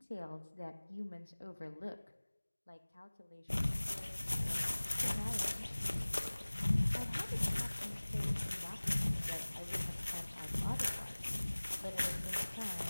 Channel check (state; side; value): inverted; both; correlation -1.00